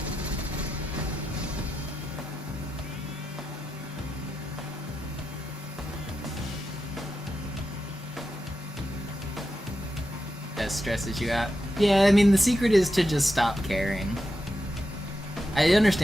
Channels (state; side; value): normal; both; correlation 0.88